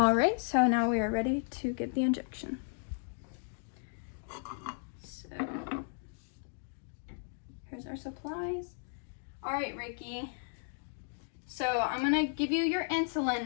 right, so now we are ready to give the injection. So here's our supplies. All right, Ricky. So I'm gonna give you your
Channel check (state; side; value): silent; right; digital silence